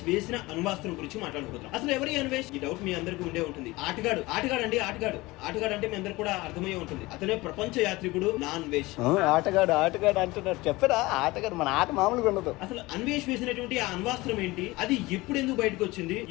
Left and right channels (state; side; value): quieter; right; 21.0 dB